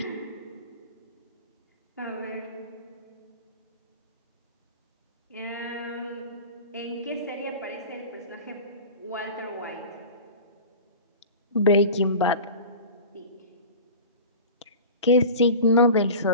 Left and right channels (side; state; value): both; inverted; correlation -0.35